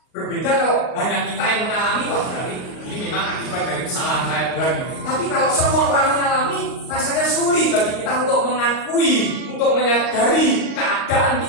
Berbeda kalau hanya kita yang mengalami, wah berarti ini memang akibat dari kesalahan saya Tuhan. Tapi kalau semua orang mengalami, rasanya sulit bagi kita untuk mengakui, untuk menyadari keadaan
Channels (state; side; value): late; right; 38 ms